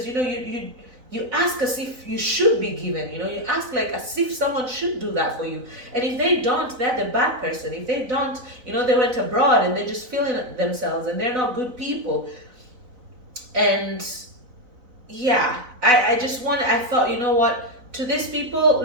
you ask as if you should be given, you ask like as if someone should do that for you, and if they don't, they're the bad person. If they don't, they went abroad and they're just feeling themselves and they're not good people. And yeah, I thought, what, to these people,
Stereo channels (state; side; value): late; left; 4.0 ms